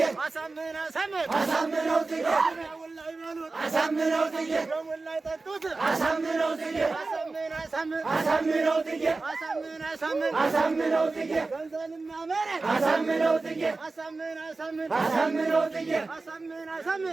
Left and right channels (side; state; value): left; quieter; 3.6 dB